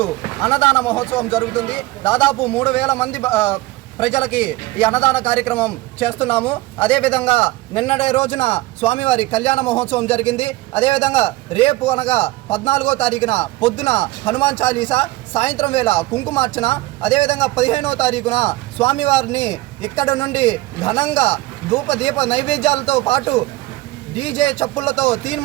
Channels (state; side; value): quieter; left; 19.3 dB